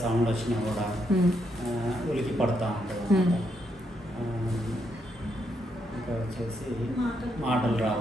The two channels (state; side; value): normal; both; correlation 0.78